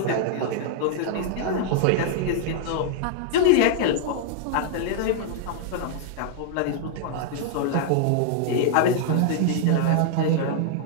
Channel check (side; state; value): both; different; correlation -0.01